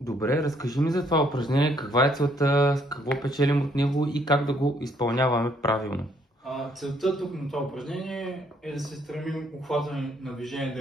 Добре, разкажи ми за това упражнение, каква е целта, какво печелим от него и как да го изпълняваме правилно. Целта тук на това упражнение е да се стремим обхватът на движение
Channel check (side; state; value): both; normal; correlation 0.68